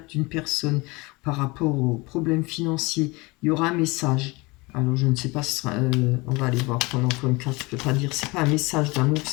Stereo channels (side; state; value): right; quieter; 24.7 dB